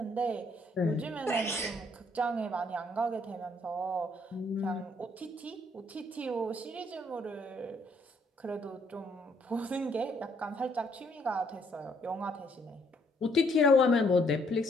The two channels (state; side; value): normal; both; correlation 0.68